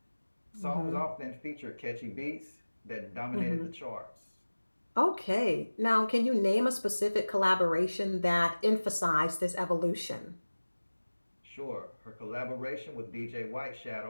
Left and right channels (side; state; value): both; inverted; correlation -1.00